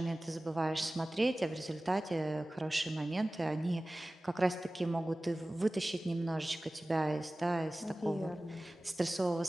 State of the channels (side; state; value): both; normal; correlation 0.97